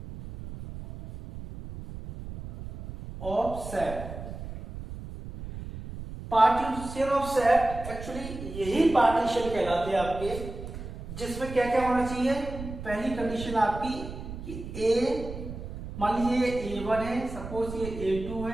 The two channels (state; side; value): noise; right; rumble, 10 dB below the sound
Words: of set, partition of set actually यही पार्टीशन कहलाते हैं आपके, जिसमें क्या क्या होना चाहिए। पहली कंडीशन आपकी कि ए, मान लीजिए A1 है, सपोज ये A2